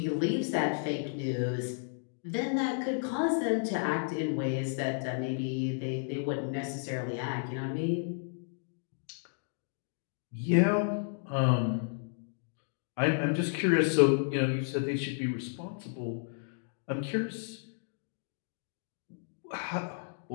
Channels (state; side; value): silent; right; digital silence